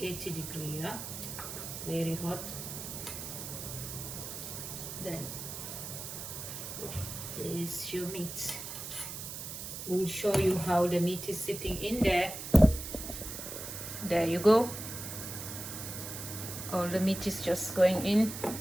degrees, yeah? Very hot. Then there's your meat. We'll show you how the meat is sitting in there. There you go. All the meat is just going in,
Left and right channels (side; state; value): right; noise; hiss, 8 dB below the sound